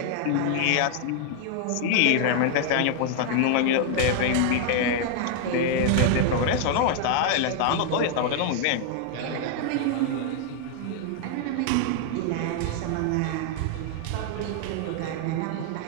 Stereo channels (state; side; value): different; both; correlation 0.00